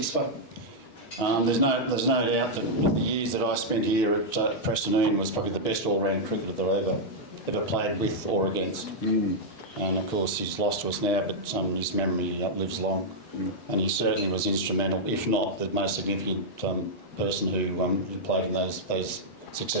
for. There's no doubt that the years that I spent here at Preston, Ian was probably the best all-round cricketer that I ever played with or against. And of course he's lost to us now, but his memory lives long. And he certainly was instrumental, if not the most significant person who played in those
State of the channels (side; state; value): right; late; 6.3 ms